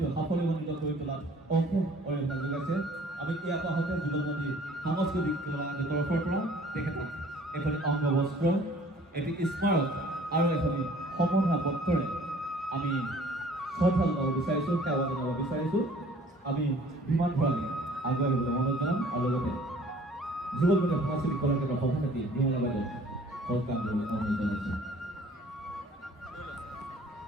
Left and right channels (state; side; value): normal; both; correlation 0.53